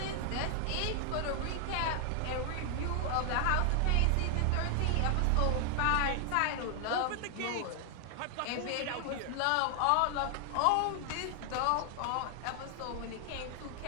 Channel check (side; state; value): both; different; correlation 0.00